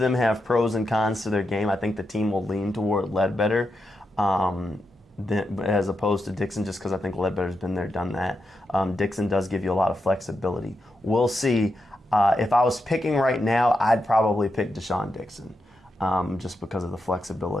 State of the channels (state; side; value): normal; both; correlation 0.86